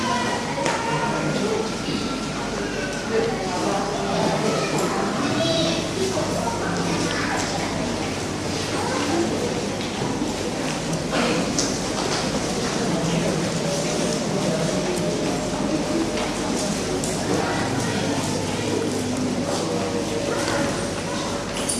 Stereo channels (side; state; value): both; identical; correlation 1.00